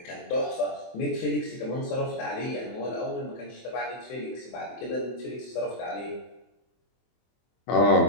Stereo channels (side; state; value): right; late; 24 ms